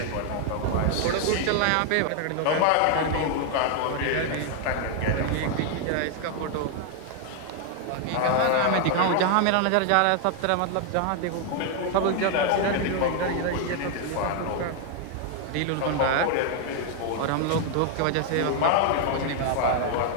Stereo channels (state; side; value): different; both; correlation 0.00